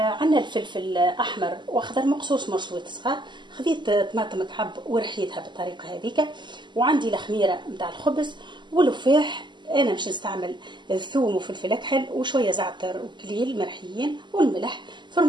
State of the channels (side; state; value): left; late; 0.22 ms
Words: عندنا الفلفل احمر واخضر مقصوص مرصوص صغار، خذيت طماطم مكعب ورحيتها بالطريقه هذيك، وعندي الخميره نتاع الخبز واللفاح. انا باش نستعمل الثوم وفلفل اكحل وشويه زعتر وكليل مرحيين والملح،